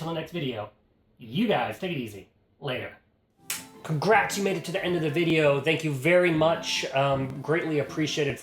the next video. You guys, take it easy. Later. Congrats, you made it to the end of the video. Thank you very much. Greatly appreciated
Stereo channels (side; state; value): both; identical; correlation 1.00